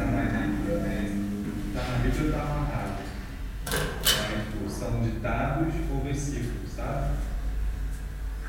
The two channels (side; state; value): both; identical; correlation 1.00